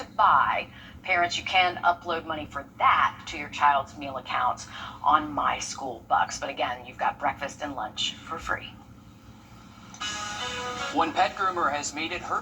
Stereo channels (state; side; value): identical; both; correlation 1.00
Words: buy. Parents, you can upload money for that to your child's meal accounts on My School Bucks. But again, you've got breakfast and lunch for free. One pet groomer has made it her